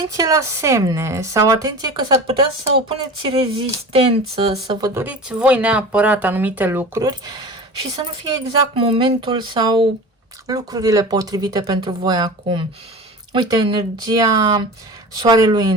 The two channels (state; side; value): normal; both; correlation 0.34